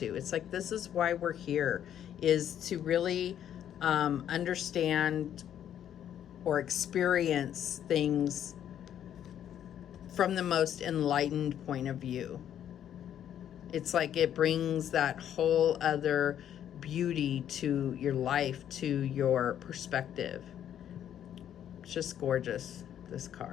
It's like, this is why we're here, is to really understand or experience things from the most enlightened point of view. It's like it brings that whole other beauty to your life, to your perspective. It's just gorgeous, this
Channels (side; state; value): right; quieter; 10.1 dB